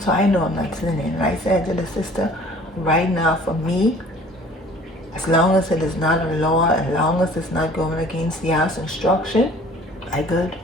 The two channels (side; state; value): both; normal; correlation 0.51